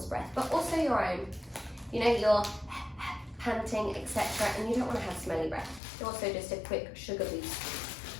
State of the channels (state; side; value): drops out; right; at 5.8 s